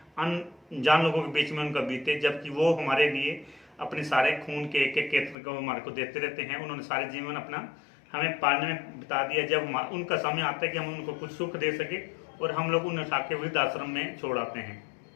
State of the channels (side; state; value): right; drops out; at 5.4 s